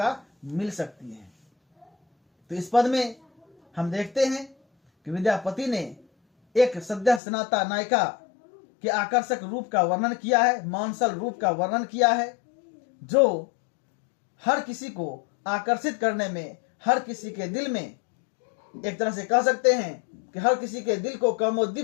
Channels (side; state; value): right; drops out; at 7.2 s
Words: मिल सकती है। तो इस पद में हम देखते हैं कि विद्यापति ने एक सद्य स्नाता नायिका के आकर्षक रूप का वर्णन किया है, मानसल रूप का वर्णन किया है, जो हर किसी को आकर्षित करने में, हर किसी के दिल में, एक तरह से कह सकते हैं कि हर किसी के दिल को